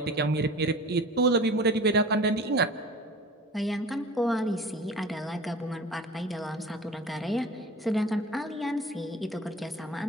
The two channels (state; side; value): normal; both; correlation 0.39